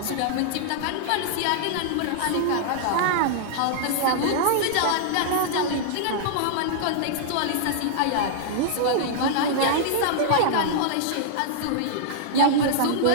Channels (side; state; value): both; different; correlation -0.01